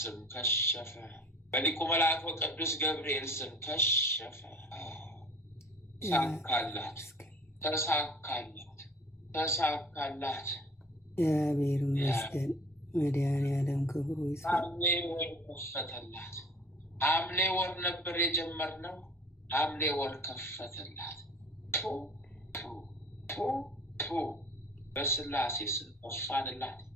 ስም ከሸፈ። በሊቁ መልአክ በቅዱስ ገብርኤል ስም ከሸፈ። ተሳካላት፣ ተሳካላት፣ ተሳካላት። እግዚአብሔር ይመስገን። መድኃኒዓለም ክብሩ ይስፋ። ሐምሌ ወር ከፈተላት። ሐምሌ ወር ነበር የጀመርነው፣ ሐምሌ ወር ከፈተላት። በስላሴ ስም እፋንላት።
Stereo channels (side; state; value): both; normal; correlation 0.48